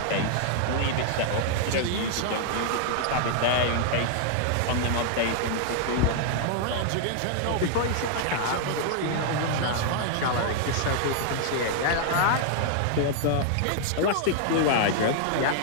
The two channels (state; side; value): different; both; correlation -0.01